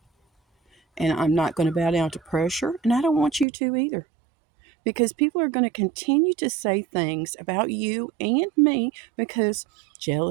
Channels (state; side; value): drops out; left; at 3.5 s